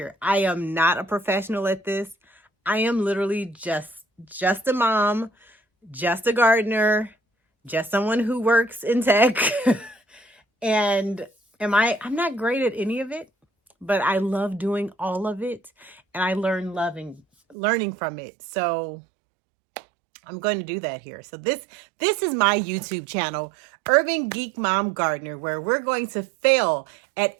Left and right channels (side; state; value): left; drops out; at 17.6 s